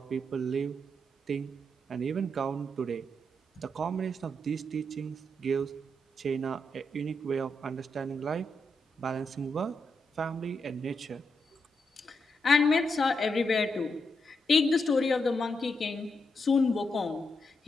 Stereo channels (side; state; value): both; normal; correlation 0.83